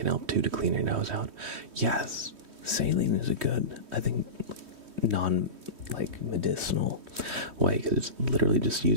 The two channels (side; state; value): left; late; 3.1 ms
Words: help too to clean your nose out. Yes, saline is a good, I think, medicinal way, because it's literally just